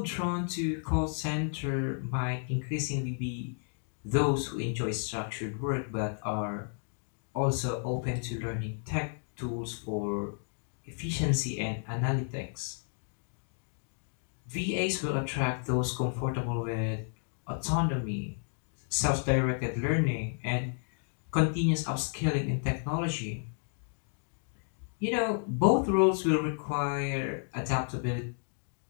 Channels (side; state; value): right; silent; 56 dB below the other